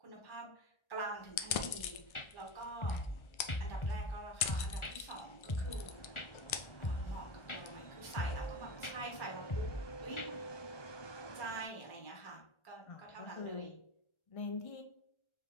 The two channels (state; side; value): late; right; 1.3 ms